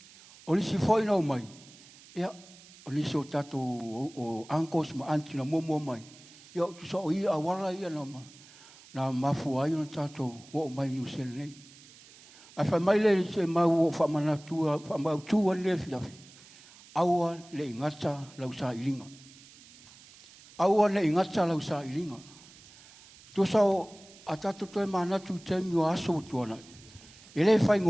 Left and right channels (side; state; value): right; noise; hiss, 22 dB below the sound